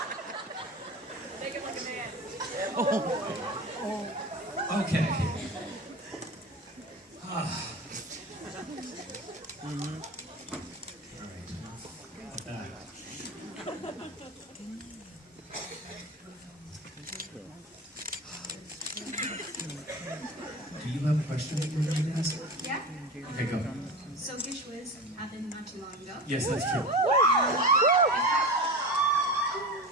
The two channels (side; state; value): both; normal; correlation 0.29